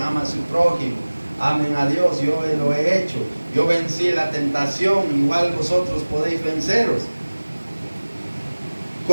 ama a su prójimo, amen a Dios, yo lo he hecho, yo vencí la tentación, igual vosotros podéis venceros.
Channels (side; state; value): both; inverted; correlation -1.00